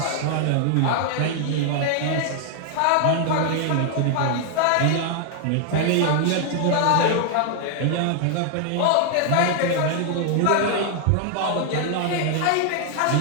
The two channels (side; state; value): both; different; correlation 0.00